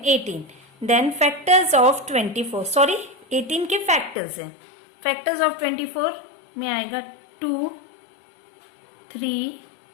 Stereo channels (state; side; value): drops out; right; at 4.2 s